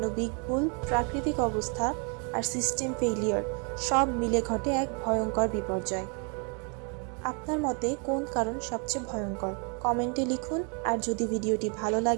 ভুল, প্রাকৃতিক অবস্থা আর সিস্টেম ফেইলিয়ার সব মিলে ঘটে এক ভয়ঙ্কর বিপর্যয়। আপনার মতে কোন কারণ সবচেয়ে ভয়ঙ্কর? কমেন্টে লিখুন, আর যদি ভিডিওটি ভালো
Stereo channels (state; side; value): quieter; left; 37.0 dB